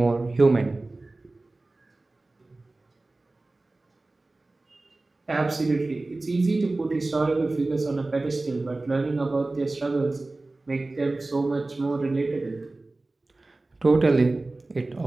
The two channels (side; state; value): left; quieter; 3.1 dB